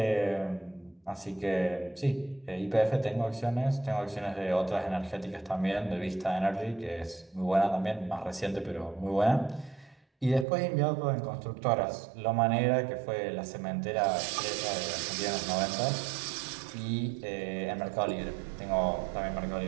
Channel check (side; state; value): left; drops out; at 10.5 s